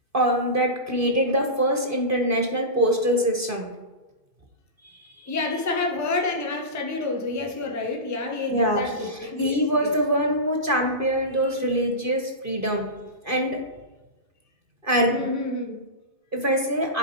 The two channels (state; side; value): late; left; 2.5 ms